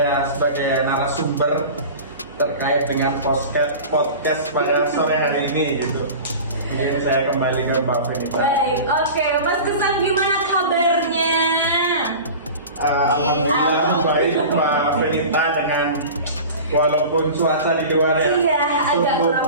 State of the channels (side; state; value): both; inverted; correlation -0.35